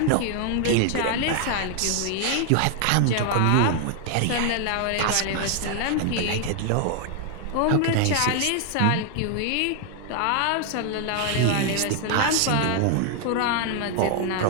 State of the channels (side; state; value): both; different; correlation 0.00